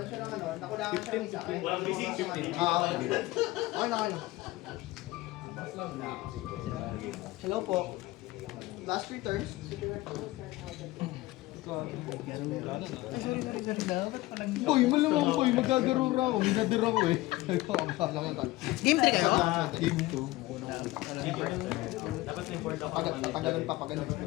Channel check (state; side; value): quieter; right; 18.8 dB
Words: siya ng ano, nakulangan siya ng isa. Walang bisig, 15. Okay na. Hello po. Last 3 turns. Boy, malamang boy, magkagarura ako. Minadir ako eh. Game 3 kayo? Game 2. Dapat na-import ako. Tatagalan pa pag ano.